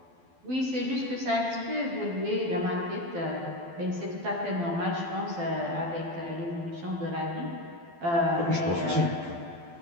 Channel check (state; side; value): late; left; 12 ms